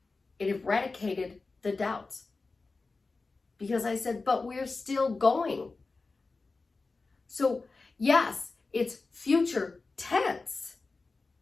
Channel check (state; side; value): quieter; right; 3.8 dB